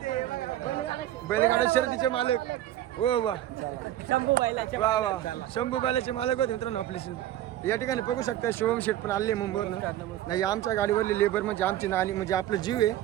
बैलगाडा शर्यतीचे मालक हो वा वा वा शंभू बैलाचे मालक होते मित्रांनो आपले. या ठिकाणी बघू शकता शिवम शेठ पण आले मुंबईवरनं. नाही आमच्या गाडीवरले लेबर म्हणजे आमची नानी म्हणजे आपलं जीव आहे.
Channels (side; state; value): left; quieter; 13.1 dB